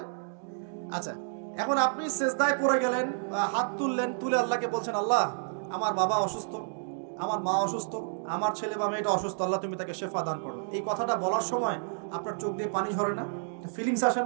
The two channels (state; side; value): silent; left; digital silence